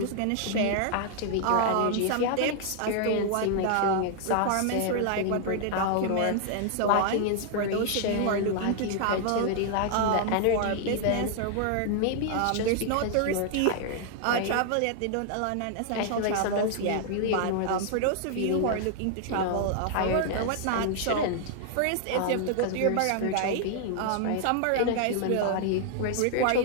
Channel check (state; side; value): different; both; correlation 0.00